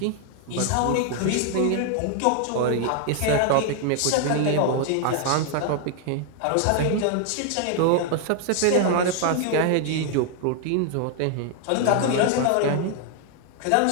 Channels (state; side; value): different; both; correlation 0.00